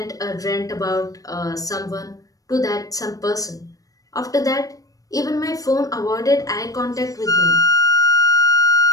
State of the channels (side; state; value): right; late; 0.17 ms